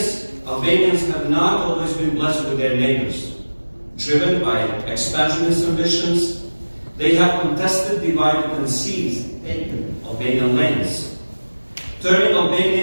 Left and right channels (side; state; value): both; inverted; correlation -1.00